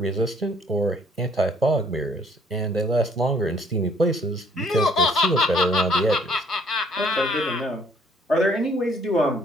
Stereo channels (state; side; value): normal; both; correlation 0.62